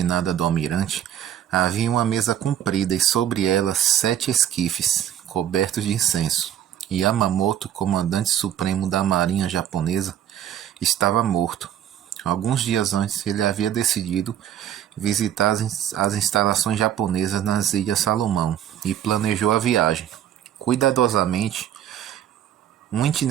do almirante, havia uma mesa comprida e sobre ela 7 esquifes, cobertos de incenso. Yamamoto, comandante supremo da marinha japonesa, estava morto. Alguns dias antes, ele havia decidido visitar as instalações japonesas nas Ilhas Salomão e planejou a viagem. Cuidadosamente, um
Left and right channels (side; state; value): left; quieter; 10.5 dB